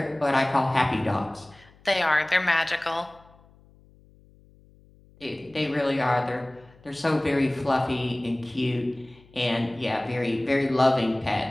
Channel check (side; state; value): left; noise; hum, 28 dB below the sound